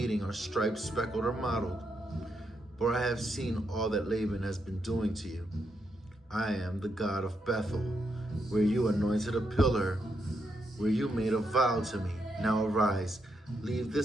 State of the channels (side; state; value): both; normal; correlation 0.80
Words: are striped, speckled, or mottled. For I have seen all that Laban has been doing to you. I am the God of Bethel, where you anointed a pillar, where you made a vow to me. Now arise, leave